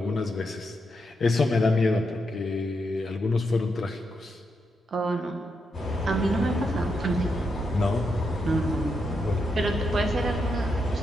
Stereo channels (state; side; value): normal; both; correlation 0.82